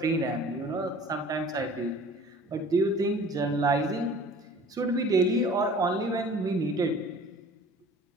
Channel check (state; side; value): normal; both; correlation 0.47